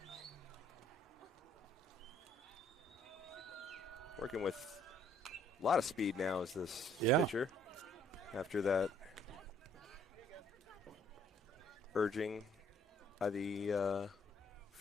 Working with a lot of speed now is this pitcher. After that urging by the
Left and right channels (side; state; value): both; normal; correlation 0.63